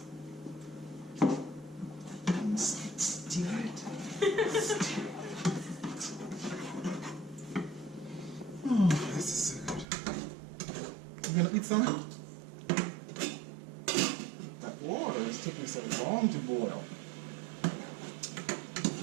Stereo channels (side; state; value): left; drops out; at 9.9 s